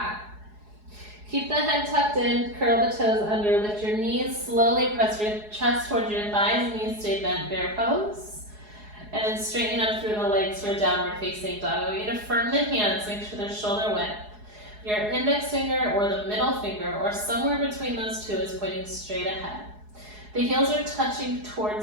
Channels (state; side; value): late; left; 4.8 ms